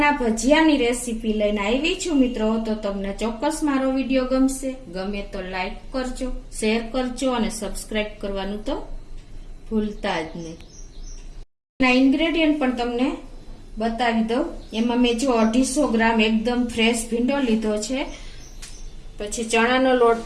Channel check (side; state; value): both; identical; correlation 1.00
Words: ભજીયાની રેસીપી લઈને આવી છું મિત્રો। તો તમને ચોક્કસ મારો વિડીયો ગમે તો લાઈક કરજો, શેર કરજો અને સબસ્ક્રાઇબ કરવાનું તો ભૂલતા જ નહીં। ના ઇન્ગ્રેડિયન્ટ પણ તમને બતાવી દઉં। એમાં મેં જો 250 ગ્રામ એકદમ ફ્રેશ ભીંડો લીધો છે, પછી ચણાનો લોટ